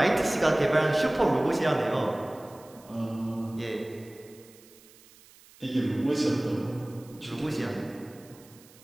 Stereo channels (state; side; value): noise; right; hiss, 25 dB below the sound